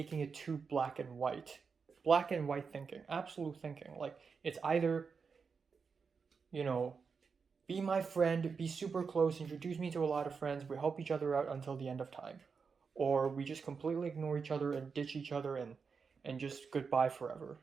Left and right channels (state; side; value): quieter; left; 5.4 dB